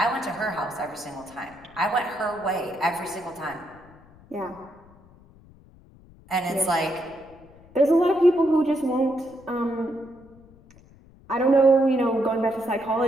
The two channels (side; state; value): left; noise; rumble, 25 dB below the sound